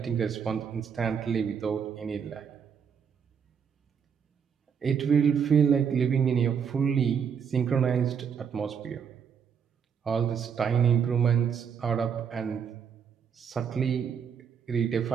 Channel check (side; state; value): left; quieter; 7.1 dB